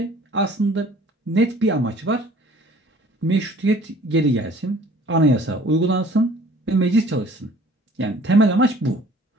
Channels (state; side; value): normal; both; correlation 0.52